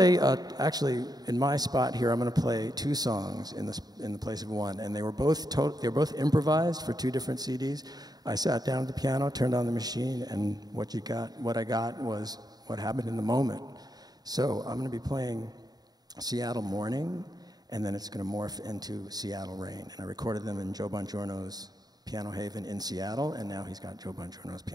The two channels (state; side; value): late; left; 0.19 ms